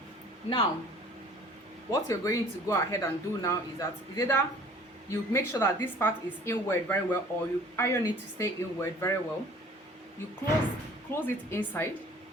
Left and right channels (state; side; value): normal; both; correlation 0.50